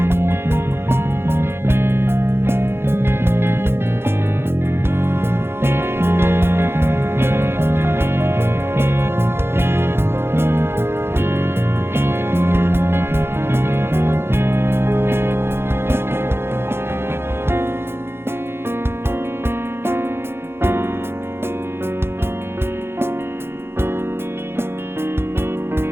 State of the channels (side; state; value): left; late; 0.11 ms